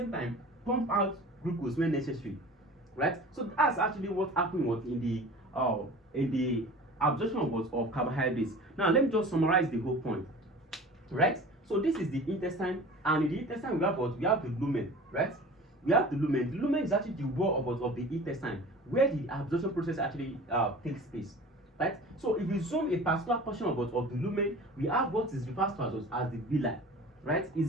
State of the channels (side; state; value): both; normal; correlation 0.40